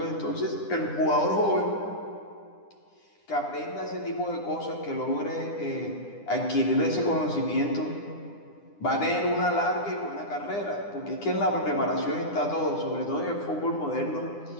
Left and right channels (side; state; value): right; late; 9.9 ms